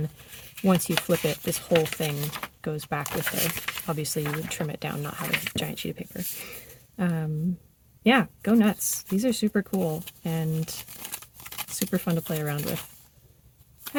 once you flip it, this whole thing goes back with it. Obviously, you would trim it down, not have a giant sheet of paper. yeah, go nuts. These are super cool and super fun to play around with.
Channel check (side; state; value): both; identical; correlation 1.00